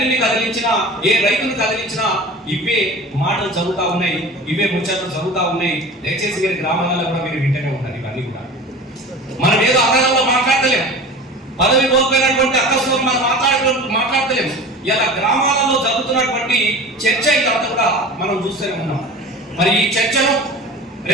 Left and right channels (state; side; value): normal; both; correlation 0.37